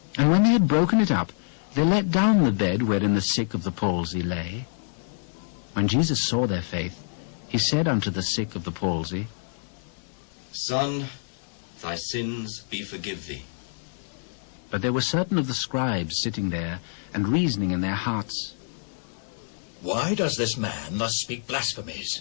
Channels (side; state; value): right; silent; digital silence